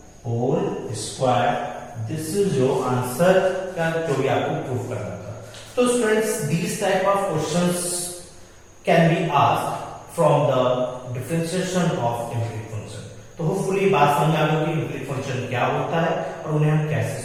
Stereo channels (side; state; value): both; identical; correlation 1.00